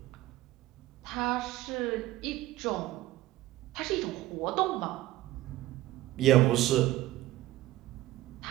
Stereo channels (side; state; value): left; quieter; 16.3 dB